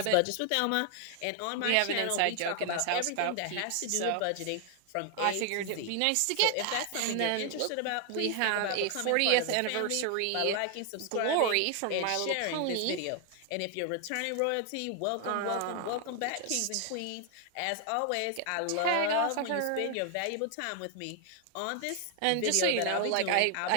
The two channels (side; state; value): both; different; correlation 0.00